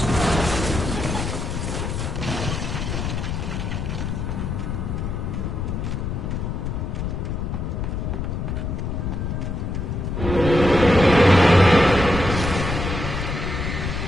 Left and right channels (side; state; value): left; noise; rumble, 3 dB below the sound